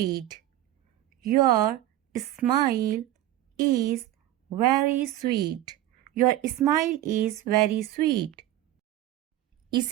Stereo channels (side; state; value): left; quieter; 14.0 dB